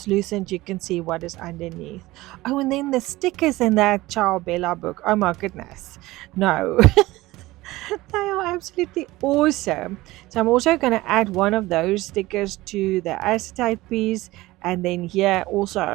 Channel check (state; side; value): quieter; left; 18.9 dB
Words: You can see what is underneath. Oh, and then the stickers in that Ciao Bella book. Oh my goodness. No. They are absolutely awesome. So I'm also going to add one of those stickers to the acetate piece. And then here